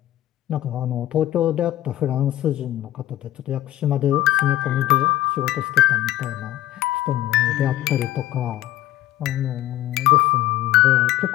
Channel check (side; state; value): right; quieter; 14.0 dB